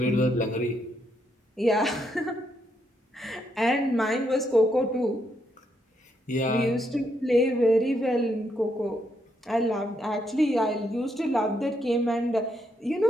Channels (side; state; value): both; normal; correlation 0.77